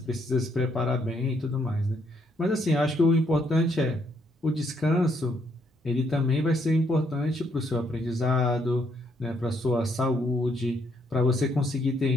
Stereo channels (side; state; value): both; normal; correlation 0.72